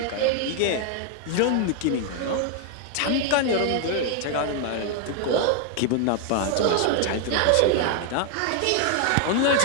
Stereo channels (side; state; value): both; different; correlation 0.00